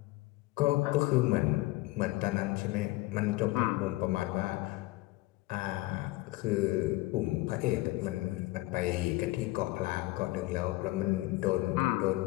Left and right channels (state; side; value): quieter; right; 19.6 dB